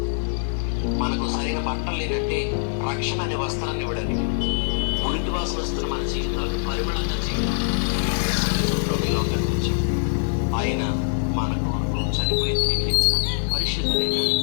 మనకు సరైన బట్టలు లేదంటే రక్షణ అనే వస్త్రాన్ని ఇవ్వడానికి, మురికి వాసన వస్తున్న మన జీవితాలు పరిమళంగా చేయడానికి లోకానికి వచ్చాడు. ఆయన మన కొరకు చనిపోయి తిరిగి లేచిన పరిశుద్ధుడైన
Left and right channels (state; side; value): silent; right; digital silence